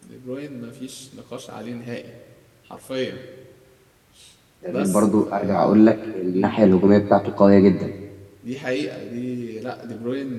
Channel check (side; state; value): both; identical; correlation 1.00